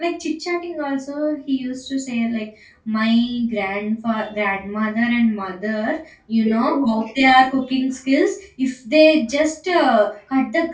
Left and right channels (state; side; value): identical; both; correlation 1.00